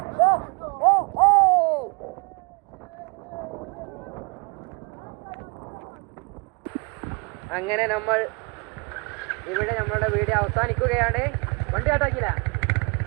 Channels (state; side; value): quieter; left; 31.4 dB